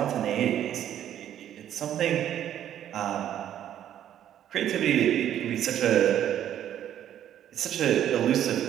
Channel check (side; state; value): left; quieter; 10.9 dB